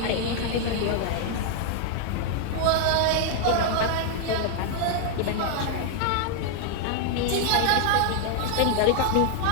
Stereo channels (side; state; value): both; different; correlation 0.00